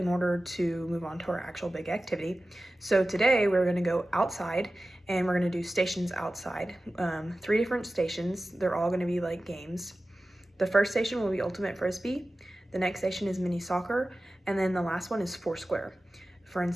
order to move on to our actual big activity. So today we're gonna go outside and we're gonna do stations outside. 3 different stations. They're all gonna be like games. The first station will be ultimate frisbee. The next station is mini soccer. And then the last one is foursquare. For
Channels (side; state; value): both; normal; correlation 0.95